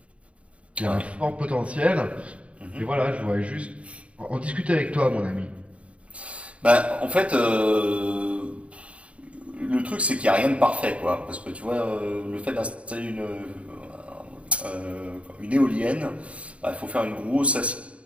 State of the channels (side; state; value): left; late; 0.063 ms